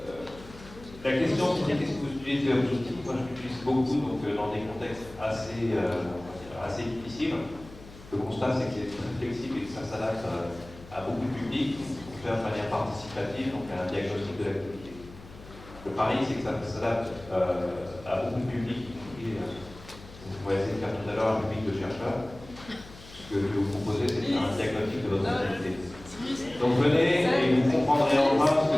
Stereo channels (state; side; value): noise; left; hum, 18 dB below the sound